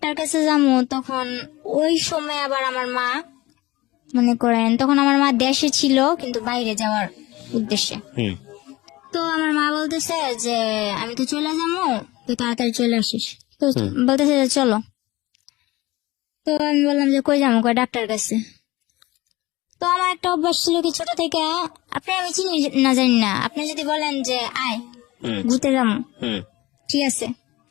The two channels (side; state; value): right; quieter; 19.7 dB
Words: কাছে যাবো। তখন ওই সময় আবার আমার মা মনে করেন, তখন আমার মা দেশে ছিল কিন্তু বাইরে যাওয়ার উদ্দেশ্যে। হুম তো আমার মা বলতেছে যে আমি তো চলে যাবো, তুই তাড়াতাড়ি চলে আসিস। তো বলতেছে যে চলো। তো আমি বললাম যে কই যাবো? কই ডাক্তার কাছে। তো আমার একটা অভ্যাস ছিল কি ছোট থেকে, আপনি আমি চিনি না জানি না, আপনি যদি বলেন যে আয় হুম ঘুরতে যাবো, হুম ঠিক আছে